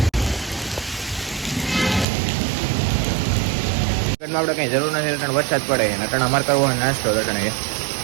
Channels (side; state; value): left; drops out; at 2.1 s